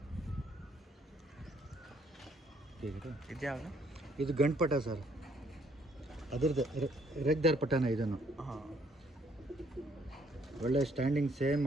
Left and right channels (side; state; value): both; normal; correlation 0.66